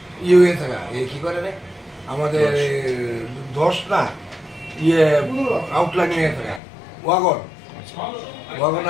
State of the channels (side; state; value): right; drops out; at 6.6 s